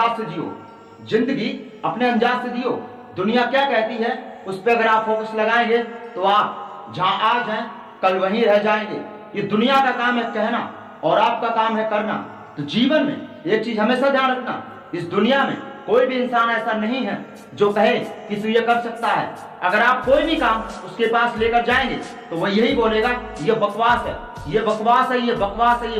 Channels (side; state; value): both; identical; correlation 1.00